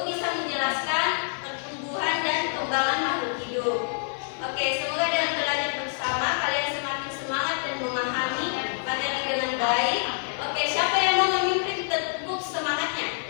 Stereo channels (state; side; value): silent; right; digital silence